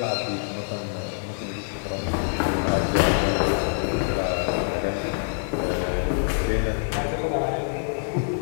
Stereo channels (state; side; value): silent; right; digital silence